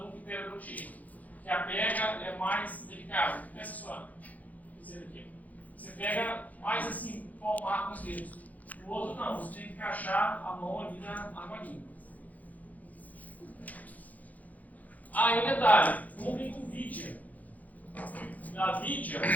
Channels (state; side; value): late; right; 0.078 ms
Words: no periodontia, que a pega é mais delicada. Essa sua, aqui. Você pega mais assim, palmar com os dedos. O outro não, você tem que encaixar a mão ali na argolinha. Aí um detalhe, comprem com vidia. A vidia